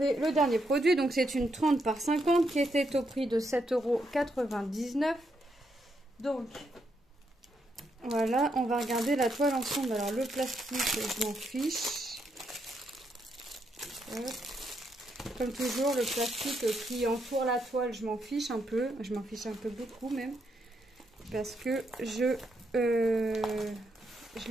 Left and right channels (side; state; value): both; normal; correlation 0.78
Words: le dernier produit. Donc c'est une 30 par 50 qui était au prix de 7,99 €. Donc, voilà, on va regarder la toile ensemble. Alors, le plastique, je m'en fiche. Hop. Comme toujours, le plastique qui entoure la toile, je m'en fiche un peu. Je m'en fiche un peu beaucoup même. Parce que je